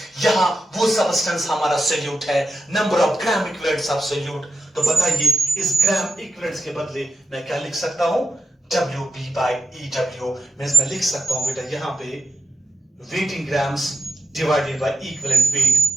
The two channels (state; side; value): normal; both; correlation 0.89